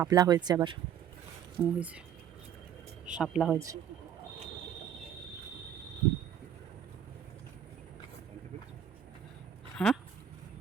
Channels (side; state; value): left; quieter; 9.2 dB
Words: হয়েছে, আবার হয়েছে শাপলা হয়েছে। হ্যাঁ,